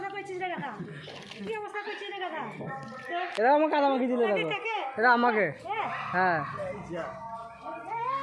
এরা আমাকে কাদা মাখি দিলে এরা আমাকে। হ্যাঁ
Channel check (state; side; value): identical; both; correlation 1.00